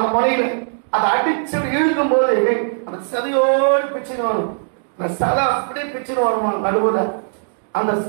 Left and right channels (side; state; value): left; silent; digital silence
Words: முனையில, அதை அடிச்சு இழுக்கும் போது அந்த சதையோடு பிச்சுன்னு வரும். அந்த சலை அப்படியே பிச்சுன்னு வருமா நடுவுல. அந்த